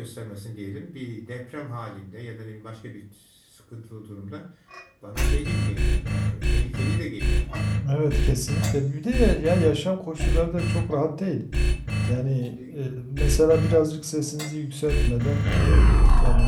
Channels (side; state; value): both; identical; correlation 1.00